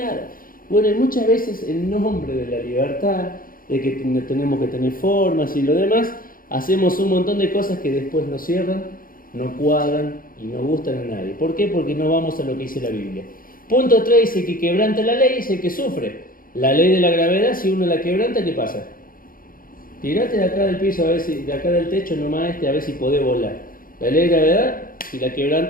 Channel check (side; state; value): right; late; 0.41 ms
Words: Bueno, y muchas veces en nombre de la libertad, de que tenemos que tener formas y lo demás, hacemos un montón de cosas que después nos cierran, no cuadran y no gustan a nadie. ¿Por qué? Porque no vamos a lo que dice la Biblia. Punto 3 dice que quebranta la ley, es el que sufre. La ley de la gravedad, si uno la quebranta, ¿qué pasa? Tirate de acá del piso, a ver si, de acá del techo nomás a ver si podés volar. La ley de gravedad, si la